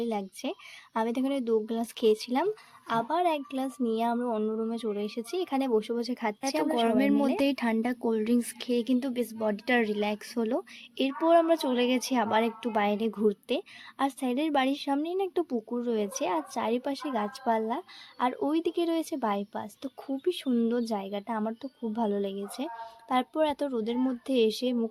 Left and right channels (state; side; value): identical; both; correlation 1.00